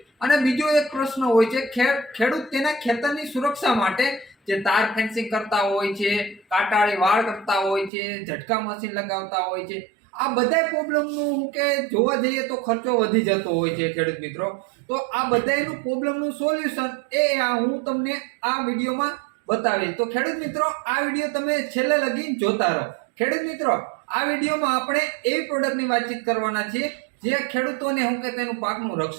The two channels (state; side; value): drops out; left; at 7.9 s